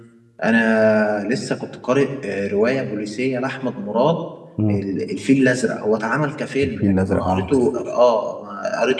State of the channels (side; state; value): both; identical; correlation 1.00